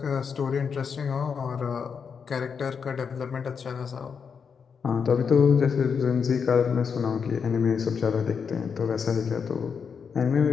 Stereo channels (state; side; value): quieter; right; 6.3 dB